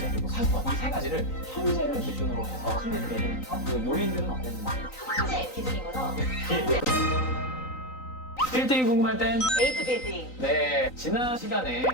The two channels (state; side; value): late; right; 3.9 ms